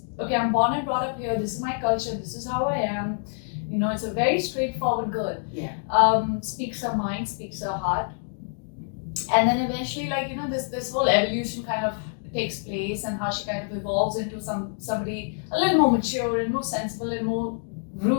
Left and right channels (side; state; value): right; silent; digital silence